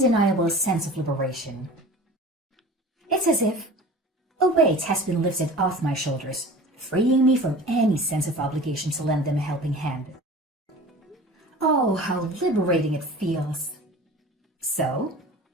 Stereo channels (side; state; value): both; normal; correlation 0.40